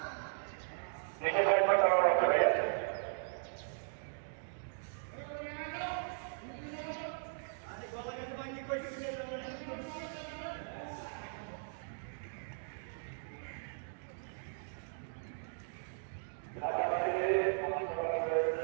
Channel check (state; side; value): silent; left; digital silence